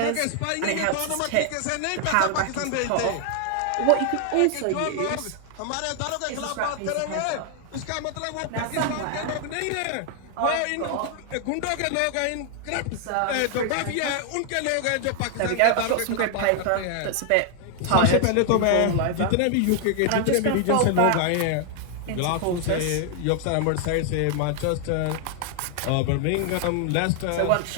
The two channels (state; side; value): different; both; correlation 0.00